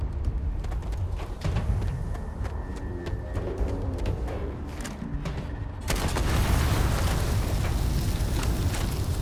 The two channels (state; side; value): identical; both; correlation 1.00